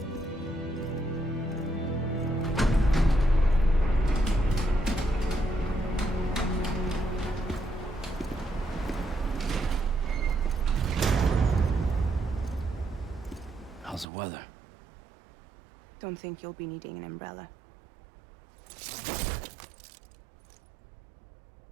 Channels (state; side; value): drops out; left; at 14.1 s